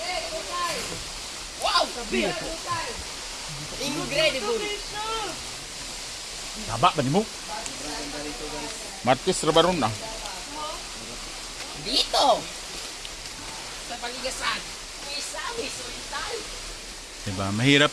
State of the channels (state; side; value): identical; both; correlation 1.00